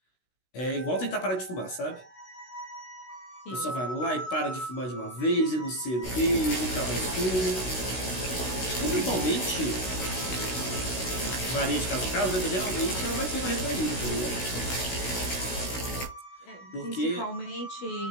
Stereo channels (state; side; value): late; right; 16 ms